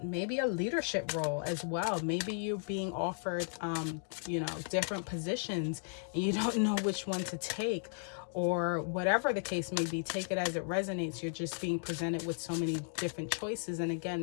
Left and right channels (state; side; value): silent; right; digital silence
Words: maybe a leadership role as well. Maybe you're being offered, you know, different positions and you don't know which one to take, or whatever the case may be. Take it as it resonates. You're just being presented with so many different choices. And